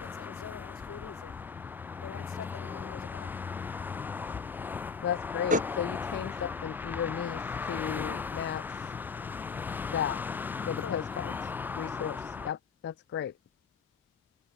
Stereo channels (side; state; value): right; quieter; 5.9 dB